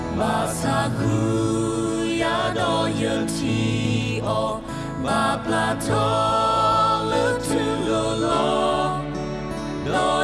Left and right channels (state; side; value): identical; both; correlation 1.00